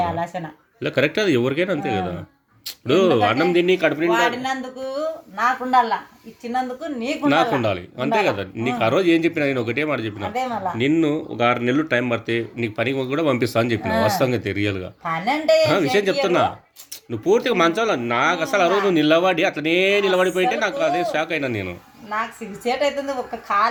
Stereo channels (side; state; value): both; identical; correlation 1.00